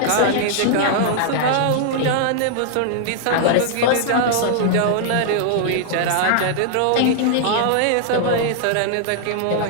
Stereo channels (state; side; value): different; both; correlation -0.01